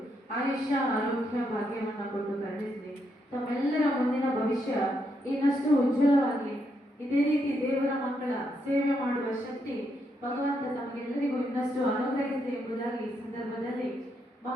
ಆಯುಷ್ಯ, ಆರೋಗ್ಯ, ಭಾಗ್ಯವನ್ನ ಕೊಟ್ಟು ಕರುಣಿಸಲಿ. ತಮ್ಮೆಲ್ಲರ ಮುಂದಿನ ಭವಿಷ್ಯ ಇನ್ನಷ್ಟು ಉಜ್ವಲವಾಗಿ, ಇದೇ ರೀತಿ ದೇವರ ಮಕ್ಕಳ ಸೇವೆ ಮಾಡುವ ಶಕ್ತಿ ಭಗವಂತ ತಮಗೆಲ್ಲರಿಗೂ ಇನ್ನಷ್ಟು ಅನುಗ್ರಹಿಸಲಿ ಎಂಬುದಾಗಿ ಈ ಸಂದರ್ಭದಲ್ಲಿ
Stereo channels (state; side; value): normal; both; correlation 0.79